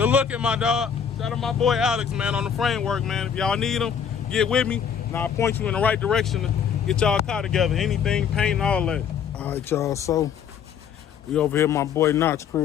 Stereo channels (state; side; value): quieter; right; 7.6 dB